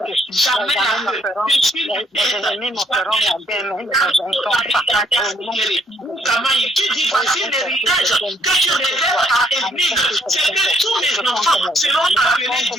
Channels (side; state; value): both; normal; correlation 0.68